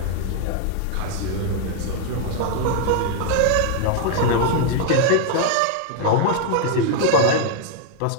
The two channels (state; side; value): different; both; correlation 0.00